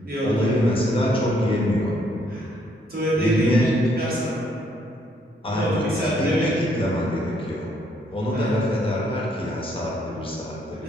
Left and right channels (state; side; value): normal; both; correlation 0.69